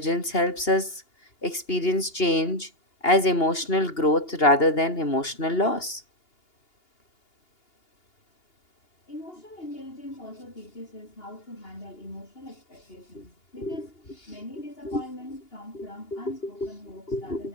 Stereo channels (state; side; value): late; right; 2.8 ms